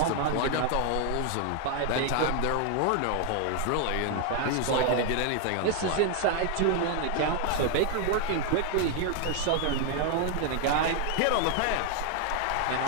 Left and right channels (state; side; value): different; both; correlation 0.01